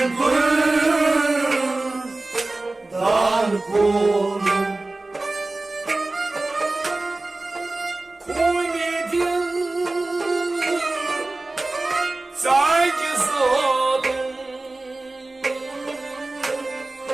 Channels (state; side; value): quieter; left; 3.0 dB